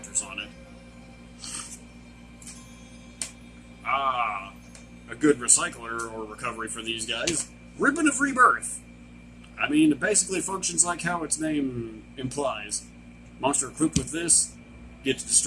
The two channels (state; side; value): identical; both; correlation 1.00